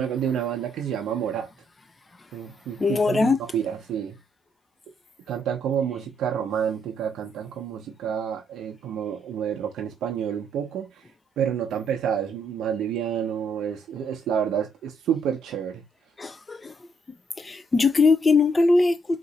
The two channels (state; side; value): normal; both; correlation 0.73